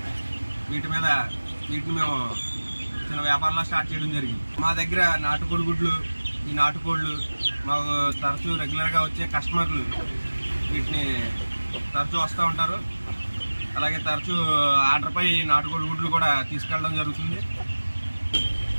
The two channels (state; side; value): inverted; both; correlation -1.00